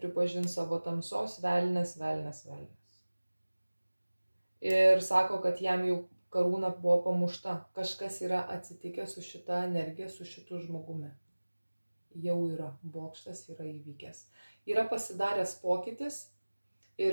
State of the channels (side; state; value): both; inverted; correlation -1.00